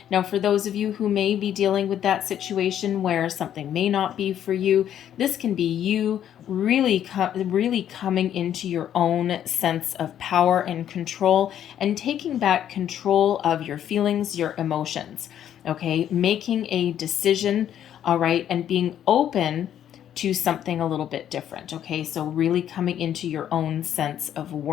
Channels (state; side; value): quieter; right; 10.3 dB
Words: Now, for those of you who may be dealing with that situation where something may not be for you, this can be you really coming into your own sense of power and control and taking back control of your feelings, your emotions. Okay, making a decision, all right, and being open to something a little bit different. Okay, so really coming into your own sense of